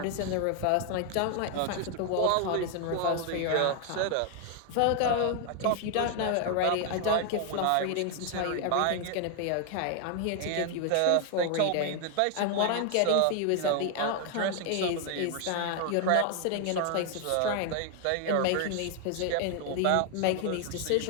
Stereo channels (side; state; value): both; different; correlation 0.00